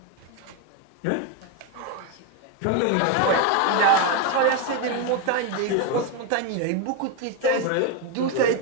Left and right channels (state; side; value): different; both; correlation 0.02